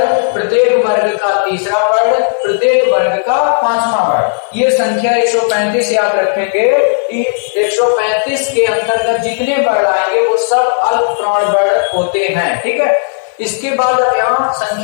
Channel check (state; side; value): silent; right; digital silence